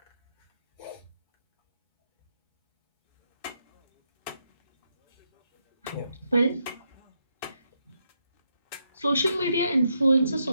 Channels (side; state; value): both; inverted; correlation -0.80